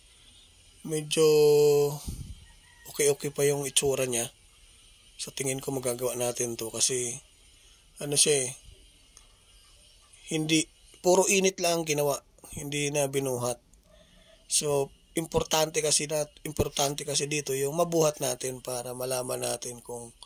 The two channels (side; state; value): both; identical; correlation 1.00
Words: medyo okay pa yung itsura niya. Sa tingin ko magagawa natin to kasi siya hindi puro init lang ginawa, hindi na binuhat. So importante kasi dito yung mabuhat natin para malaman natin kung